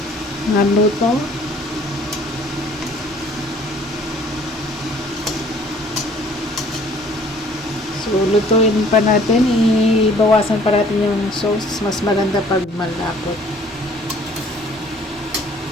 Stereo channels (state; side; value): normal; both; correlation 0.56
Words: naluto. So, lutuin pa natin. Ibawasan pa natin yung sauce. Mas maganda pag malapot.